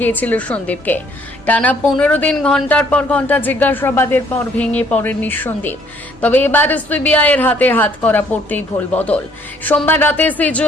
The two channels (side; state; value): both; normal; correlation 0.63